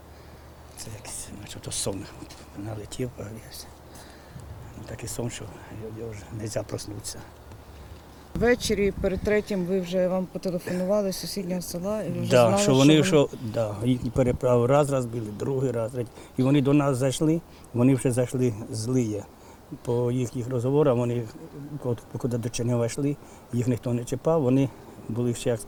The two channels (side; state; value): both; identical; correlation 1.00